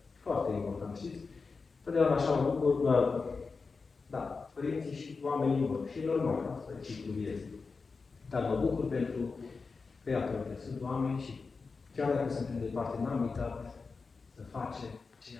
Foarte important, știți? Totdeauna așa mă bucur, da, părinții și oamenii vor. Și normal, asta e ciclul vieții. Dar mă bucur pentru că, iată, sunt oameni și chiar dacă suntem departe, n-am uitat să facem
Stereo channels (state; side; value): quieter; right; 4.5 dB